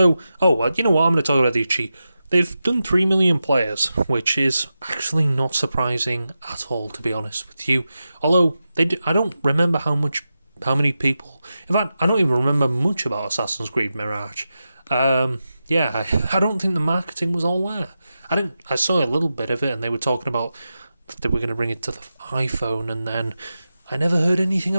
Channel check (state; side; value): inverted; both; correlation -0.91